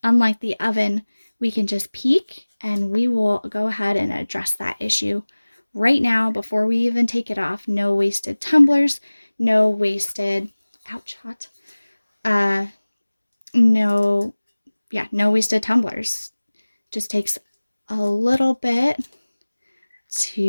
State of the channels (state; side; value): inverted; both; correlation -1.00